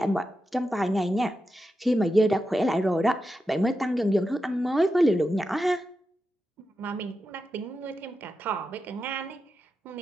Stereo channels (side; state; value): both; normal; correlation 0.89